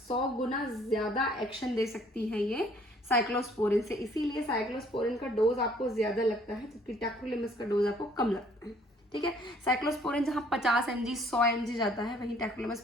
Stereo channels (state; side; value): normal; both; correlation 0.60